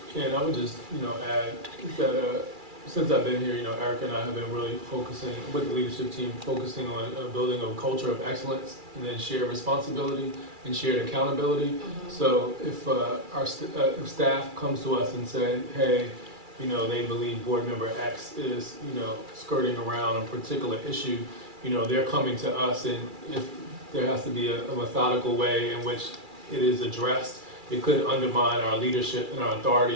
And I would just, add that, since I've been here, Erica and I have been really focusing, with the leadership team, focusing on building a culture of excellence and then shared responsibility and shared accountability. So if if staff comes to us and say, hey, they believe board member X is, skirting around a particular issue, they're coming to us, and if there has to be a methodical way in which it is addressed, it could undermine our leadership and our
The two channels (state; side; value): late; left; 2.3 ms